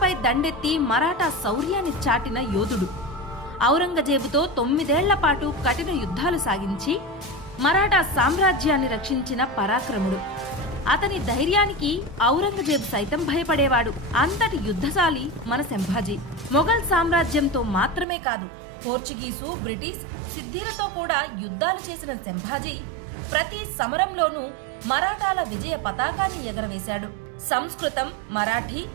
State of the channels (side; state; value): left; drops out; at 18.1 s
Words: దండెత్తి మరాఠా శౌర్యాన్ని చాటిన యోధుడు. ఔరంగజేబుతో 9 ఏళ్ల పాటు కఠిన యుద్ధాలు సాగించి మరాఠా సామ్రాజ్యాన్ని రక్షించిన పరాక్రముడు. అతని ధైర్యానికి ఔరంగజేబు సైతం భయపడేవాడు. అంతటి యుద్ధశాలి మన సంభాజీ. మొఘల్ సామ్రాజ్యంతో మాత్రమే కాదు, పోర్చుగీసు, బ్రిటిష్, సిద్ధిలతో కూడా యుద్ధాలు చేసిన సంభాజీ ప్రతి సమరంలోనూ మరాఠాల విజయ పతాకాన్ని ఎగరవేశాడు. సంస్కృతం, మరాఠీ,